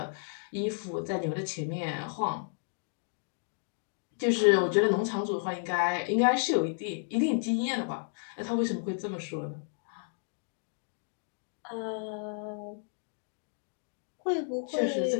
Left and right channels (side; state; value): right; silent; digital silence